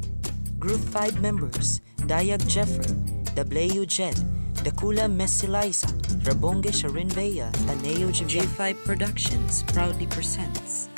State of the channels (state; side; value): inverted; both; correlation -1.00